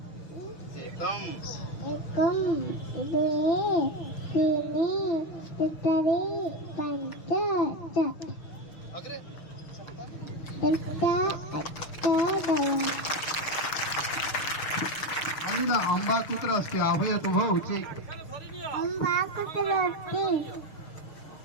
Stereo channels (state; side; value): late; right; 6.4 ms